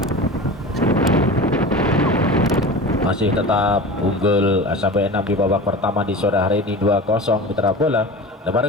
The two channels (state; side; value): normal; both; correlation 0.33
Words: Masih tetap unggul SMP 6 di babak pertama di sore hari ini 2-0 mitra bola. Lebar